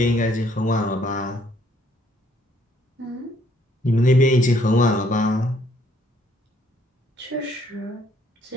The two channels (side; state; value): both; normal; correlation 0.65